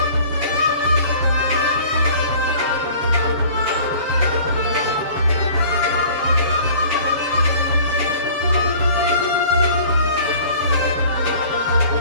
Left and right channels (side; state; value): left; late; 7.4 ms